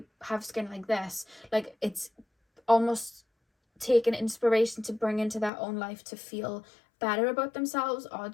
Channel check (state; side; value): drops out; right; at 5.5 s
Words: have skin like this? Like it's almost taking inspiration to bring into their own life to feel better about themselves, or